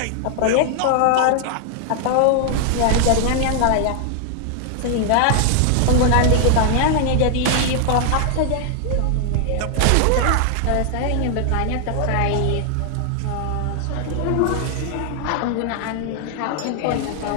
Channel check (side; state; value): both; different; correlation 0.00